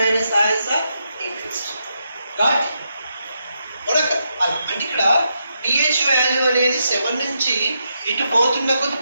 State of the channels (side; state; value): both; inverted; correlation -0.82